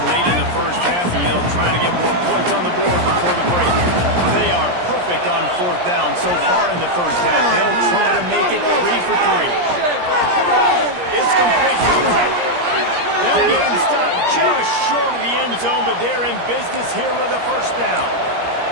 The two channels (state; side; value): late; left; 17 ms